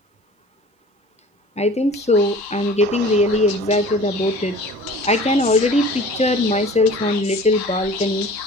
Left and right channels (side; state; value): both; normal; correlation 0.45